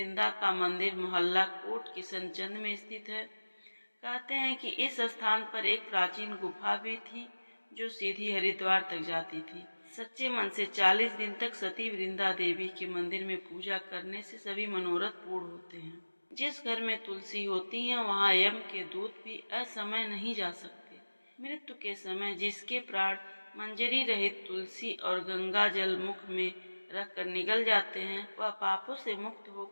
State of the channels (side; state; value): both; inverted; correlation -1.00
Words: का मंदिर मोहल्ला कोट किशनचंद में स्थित है। कहते हैं कि इस स्थान पर एक प्राचीन गुफा भी थी जो सीधी हरिद्वार तक जाती थी। सच्चे मन से 40 दिन तक सती वृंदा देवी के मंदिर में पूजा करने से सभी मनोरथ पूर्ण होते हैं। जिस घर में तुलसी होती है वहाँ यम के दूत भी असमय नहीं जा सकते। मृत्यु के समय जिसके प्राण मंजरी रहित तुलसी और गंगा जल मुख में रखकर निगल जाते हैं, वह पापों से मुक्त